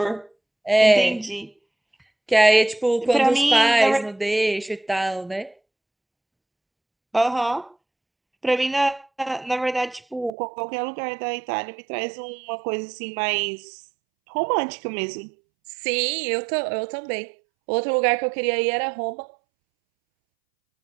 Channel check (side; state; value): left; drops out; at 10.3 s